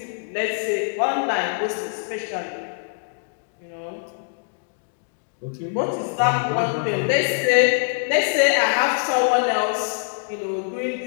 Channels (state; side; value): silent; right; digital silence